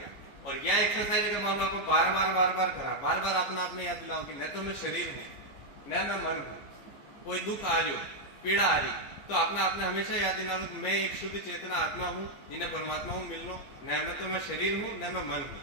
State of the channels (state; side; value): late; right; 14 ms